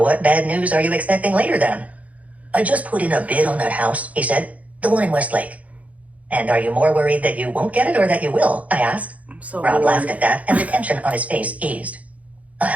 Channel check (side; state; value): left; late; 0.069 ms